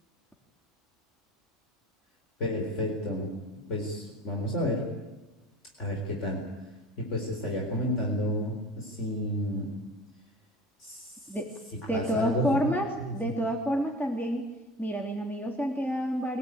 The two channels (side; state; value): both; normal; correlation 0.38